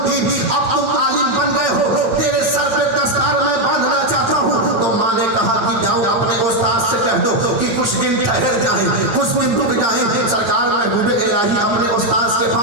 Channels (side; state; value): left; late; 8.8 ms